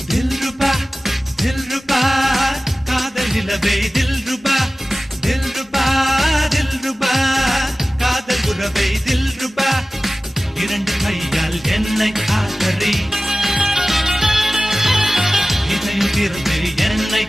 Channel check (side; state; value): both; normal; correlation 0.97